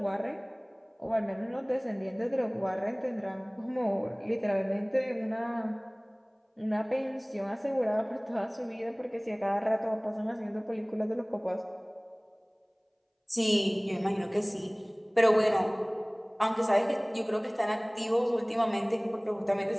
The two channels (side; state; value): both; identical; correlation 1.00